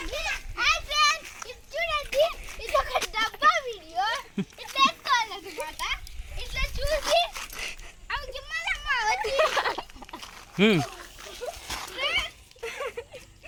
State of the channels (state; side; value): identical; both; correlation 1.00